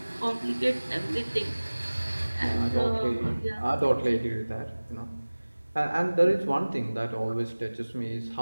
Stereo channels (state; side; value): inverted; both; correlation -1.00